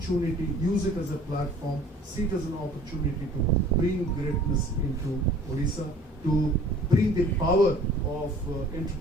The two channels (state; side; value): normal; both; correlation 0.50